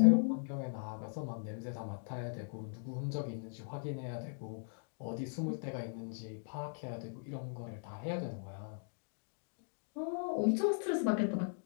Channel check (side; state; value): right; silent; digital silence